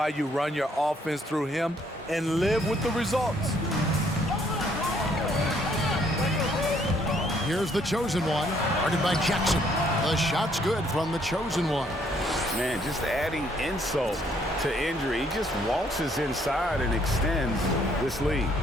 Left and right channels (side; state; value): both; normal; correlation 0.67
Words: you run your offense through him and live with the results. Here's the chosen one, guarded by Jackson. The shot's good from the chosen one. Man, just adding insult to injury. He just waltzes inside and extends this lead.